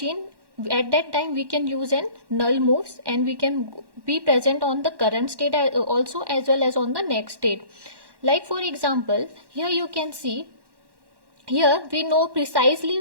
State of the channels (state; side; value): late; left; 1.1 ms